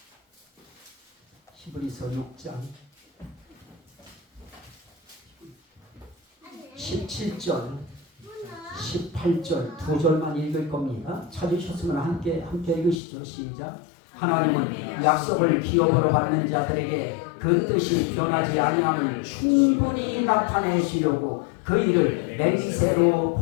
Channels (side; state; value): right; drops out; at 13.0 s